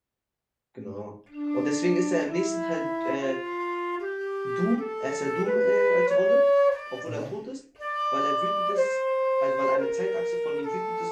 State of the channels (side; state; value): both; identical; correlation 1.00